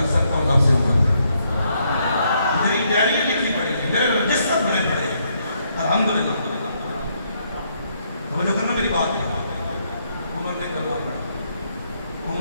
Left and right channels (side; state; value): both; inverted; correlation -0.74